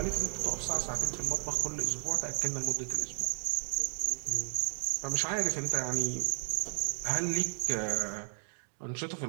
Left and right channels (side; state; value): left; silent; 56 dB below the other